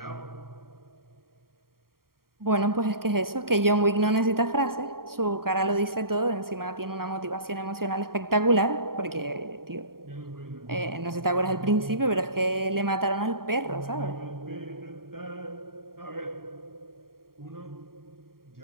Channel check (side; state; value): left; late; 0.93 ms